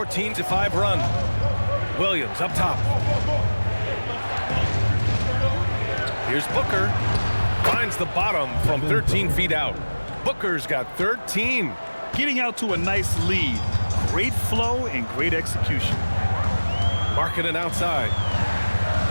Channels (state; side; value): inverted; both; correlation -1.00